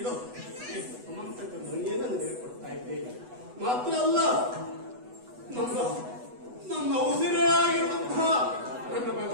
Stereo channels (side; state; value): left; late; 8.1 ms